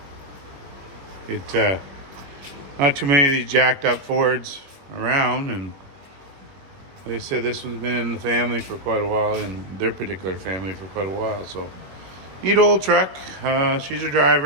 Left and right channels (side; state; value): left; late; 21 ms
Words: too many of these jacked up Fords around, and they said this one's been in the family for quite a while, in their particular family for quite a while. So neat old truck. She's a